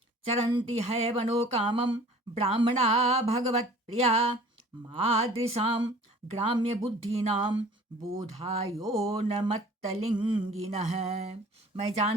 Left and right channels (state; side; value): normal; both; correlation 0.48